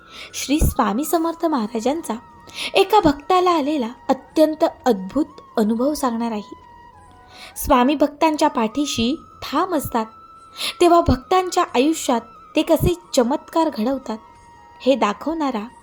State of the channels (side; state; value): both; identical; correlation 1.00